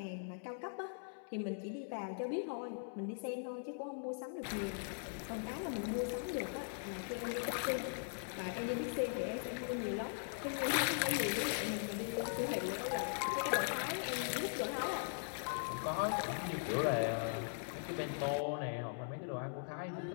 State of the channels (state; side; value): silent; right; digital silence